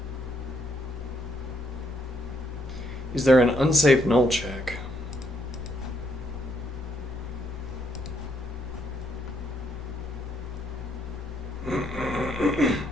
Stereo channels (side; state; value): both; normal; correlation 0.74